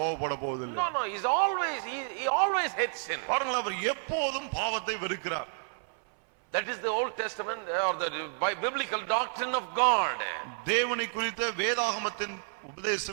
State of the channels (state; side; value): silent; left; 58 dB below the other